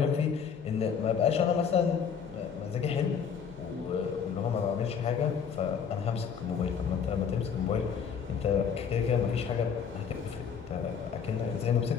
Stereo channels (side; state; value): right; quieter; 6.9 dB